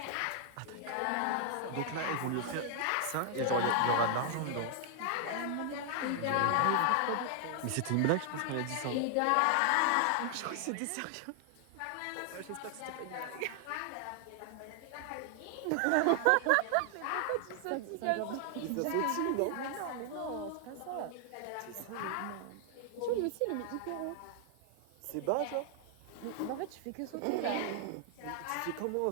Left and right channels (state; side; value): different; both; correlation 0.00